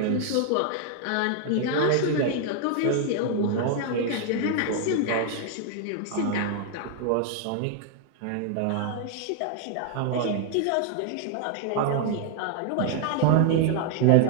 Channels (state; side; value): different; both; correlation 0.00